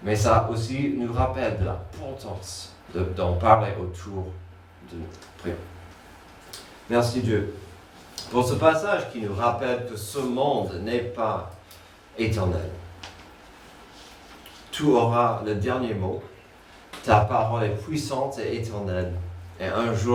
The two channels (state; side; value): identical; both; correlation 1.00